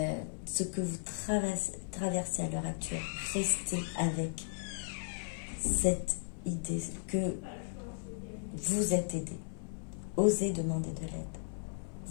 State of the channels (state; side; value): silent; right; 54 dB below the other